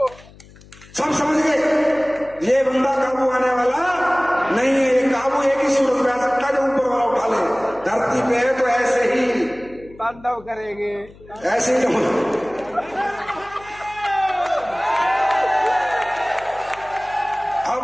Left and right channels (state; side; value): noise; left; hum, 23 dB below the sound